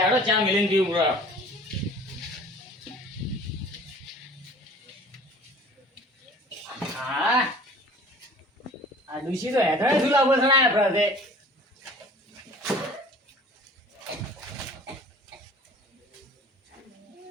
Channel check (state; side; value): normal; both; correlation 0.46